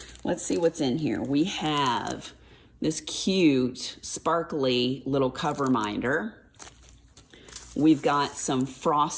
let's see what's in here. We have this cute, sparkly little cover minder. We've got some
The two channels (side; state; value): both; identical; correlation 1.00